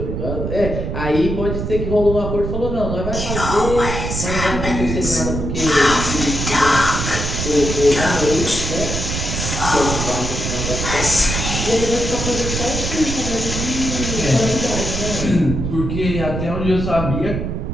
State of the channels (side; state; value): right; noise; rumble, 3 dB below the sound